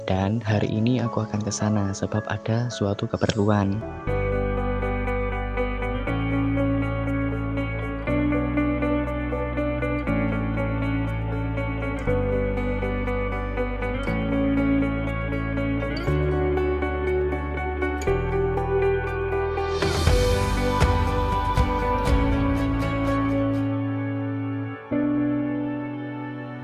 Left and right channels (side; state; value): both; identical; correlation 1.00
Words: Dan hari ini aku akan ke sana sebab ada suatu keperluan.